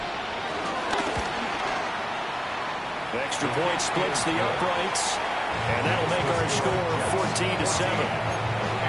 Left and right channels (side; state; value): both; identical; correlation 1.00